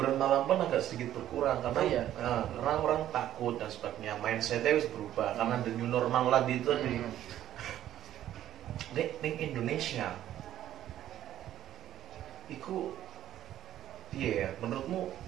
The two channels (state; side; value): quieter; left; 12.0 dB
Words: malam pun agak sedikit berkurang karena karena orang takut dan sebagainya, mindsetnya harus berubah karena the new normal lagi itu di Indonesia. Iku iya, menurutmu